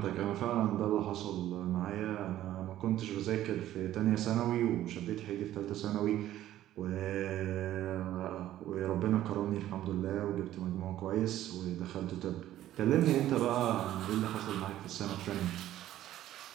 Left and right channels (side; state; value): left; quieter; 13.3 dB